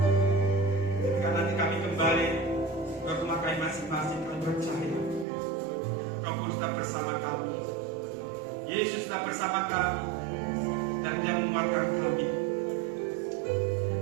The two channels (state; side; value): drops out; left; at 5.2 s